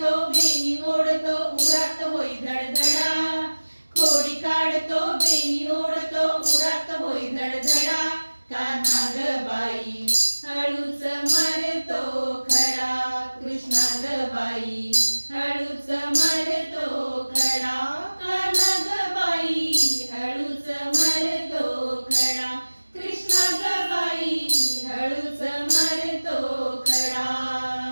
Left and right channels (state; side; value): inverted; both; correlation -1.00